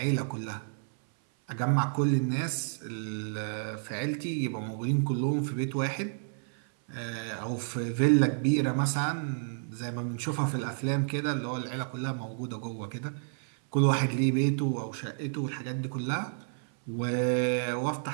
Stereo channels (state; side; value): silent; left; 57 dB below the other